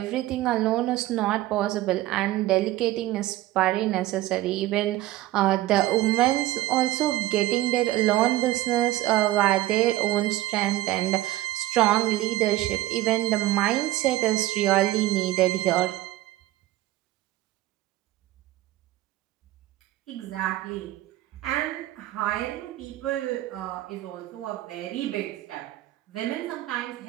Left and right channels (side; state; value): left; quieter; 15.9 dB